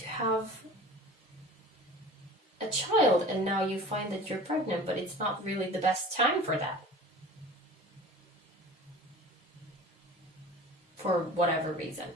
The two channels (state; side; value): normal; both; correlation 0.41